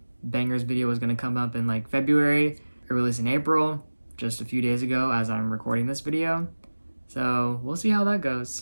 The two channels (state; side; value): inverted; both; correlation -1.00